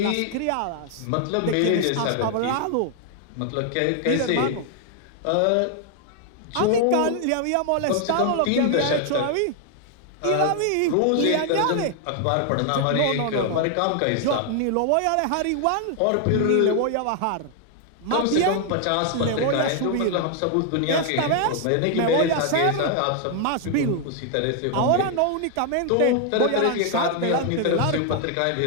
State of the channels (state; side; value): different; both; correlation 0.00